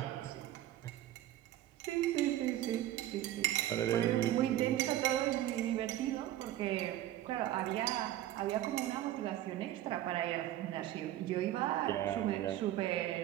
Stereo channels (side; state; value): left; quieter; 13.5 dB